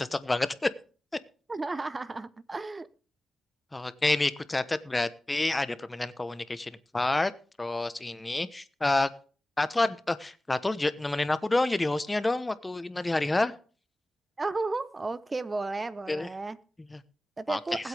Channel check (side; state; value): both; normal; correlation 0.97